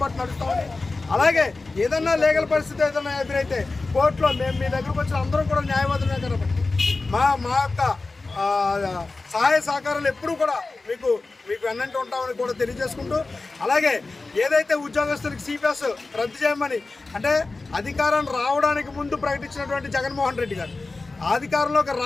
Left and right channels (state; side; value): quieter; right; 3.5 dB